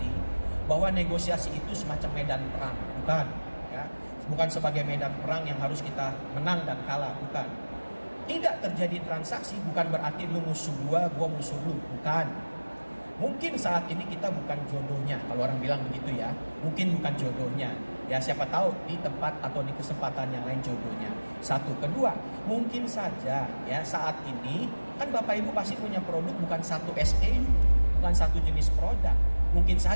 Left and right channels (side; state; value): both; inverted; correlation -1.00